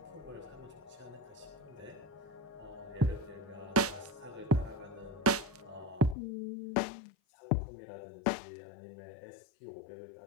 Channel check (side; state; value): right; drops out; at 6.2 s